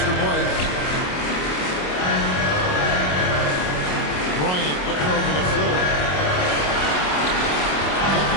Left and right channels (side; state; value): right; late; 27 ms